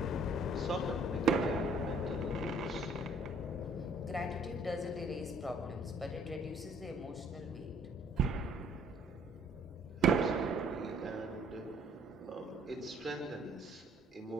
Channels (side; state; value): both; normal; correlation 0.60